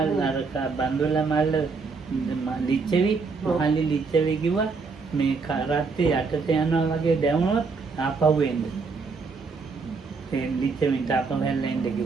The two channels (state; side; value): quieter; left; 4.6 dB